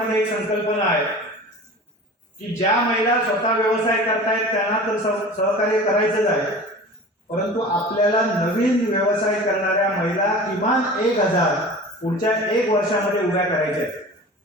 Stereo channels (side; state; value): both; normal; correlation 0.38